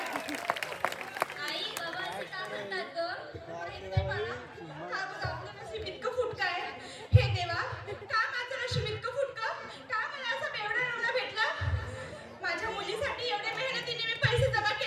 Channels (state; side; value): identical; both; correlation 1.00